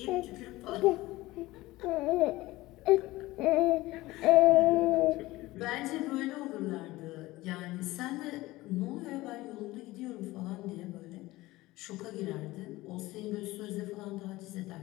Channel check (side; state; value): right; quieter; 18.8 dB